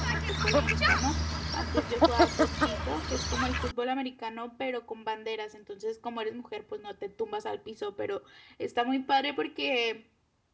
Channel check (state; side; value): identical; both; correlation 1.00